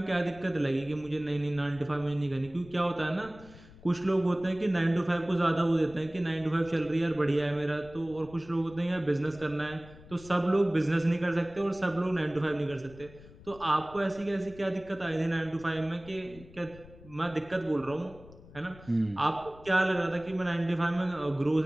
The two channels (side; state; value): left; noise; rumble, 20 dB below the sound